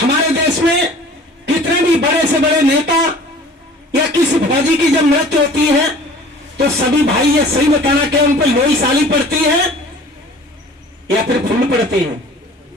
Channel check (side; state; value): both; normal; correlation 0.46